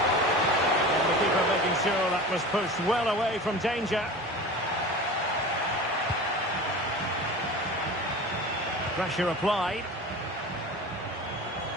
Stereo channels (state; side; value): normal; both; correlation 0.34